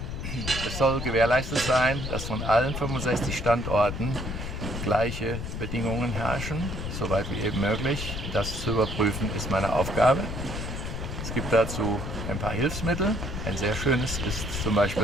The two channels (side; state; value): left; noise; rumble, 5 dB below the sound